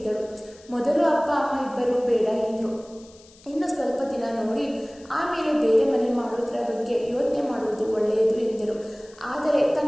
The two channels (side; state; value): left; noise; hiss, 26 dB below the sound